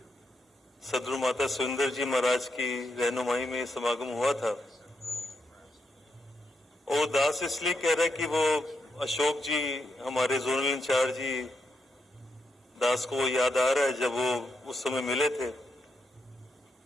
सदगुरु माता सुंदर जी महाराज की रहनुमाई में समागम हुआ था, वो दास इसलिए कह रहा है कि वो अशोक जी हमारे जोनल इंचार्ज जी दास को वो याद आ रहा है जब वो उस समय मिले थे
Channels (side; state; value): both; normal; correlation 0.82